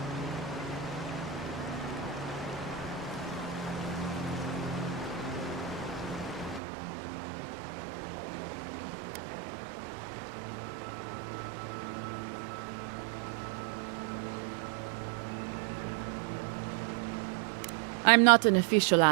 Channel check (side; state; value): left; drops out; at 6.6 s